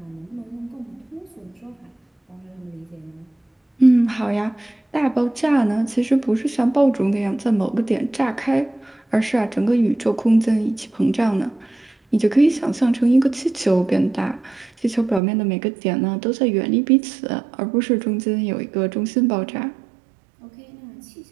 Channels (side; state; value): left; drops out; at 15.2 s